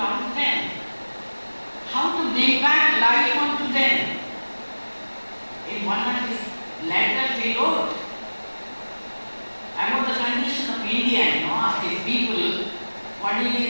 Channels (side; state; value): both; inverted; correlation -1.00